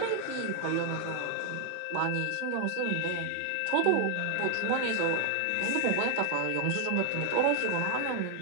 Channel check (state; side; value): different; both; correlation 0.00